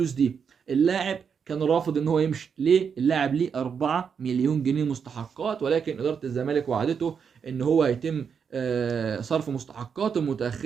دي. اللاعب كان رافض ان هو يمشي. ليه؟ اللاعب ليه 4 مليون جنيه مستحقات، ولكن اداره الزمالك وعدته ان هو هيتم صرف مستحقاته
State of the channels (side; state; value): left; quieter; 6.7 dB